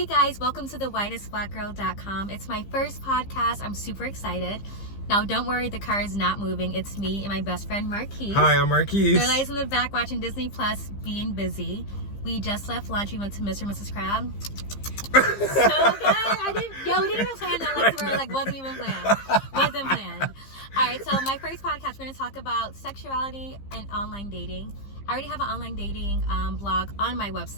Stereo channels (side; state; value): right; late; 15 ms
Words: guys, welcome to the whitestblackgirl.com. It's my first podcast. I'm super excited. Now don't worry, the car is not moving. It's me and my best friend Marquise. Hi, I'm Marquise. They're guys in the back watching Disney Plus, being busy. We just left lunch. We went to Mr. and Mrs. Crab. So good. We didn't even plan that. Wasn't even planned. Wasn't planned. All right, so my first podcast, we're going to talk about sexuality and online dating. I already have an online dating blog on my